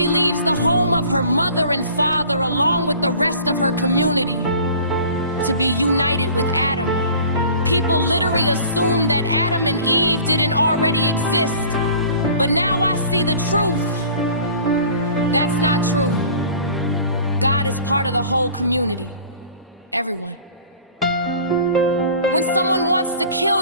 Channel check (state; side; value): inverted; both; correlation -0.45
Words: leaves the home of her mother and father along with the rest of her community to be united with Adam. People literally assume that Adam and Eve didn't already exist, but now I see the truth. That's not true. God is part of the whole community, everyone. When someone wants to kill